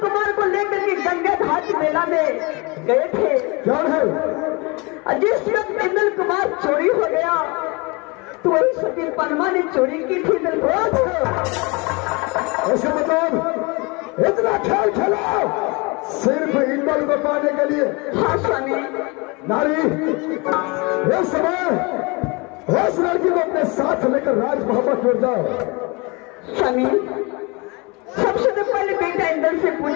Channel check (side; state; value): right; quieter; 27.7 dB